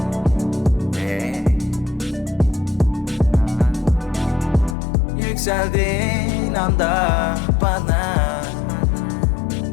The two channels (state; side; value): drops out; right; at 4.8 s